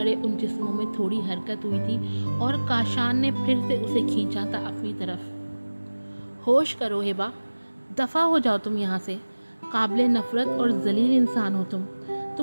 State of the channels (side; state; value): both; inverted; correlation -1.00